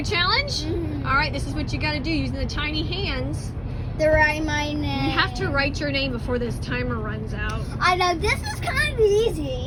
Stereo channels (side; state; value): both; identical; correlation 1.00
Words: challenge? All right, this is what you got to do using the tiny hands. To write my name. You have to write your name before this timer runs out. I know, this is kind of